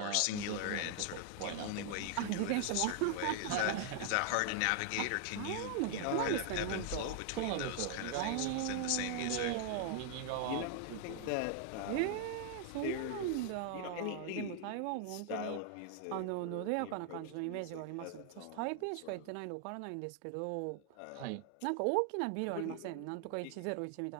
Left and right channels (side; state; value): both; different; correlation 0.00